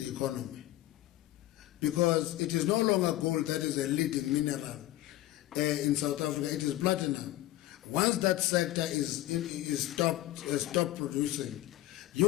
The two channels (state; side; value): quieter; right; 15.2 dB